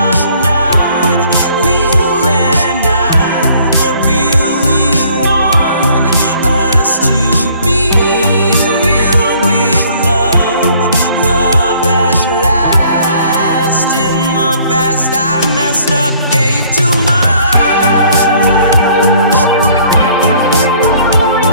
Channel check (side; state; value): both; inverted; correlation -0.59